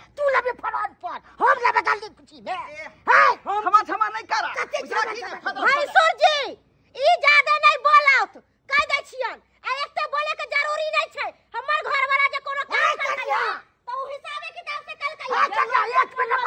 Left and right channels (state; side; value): identical; both; correlation 1.00